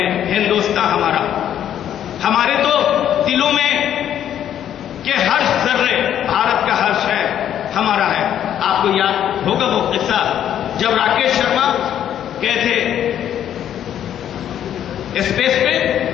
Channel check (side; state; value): right; quieter; 10.3 dB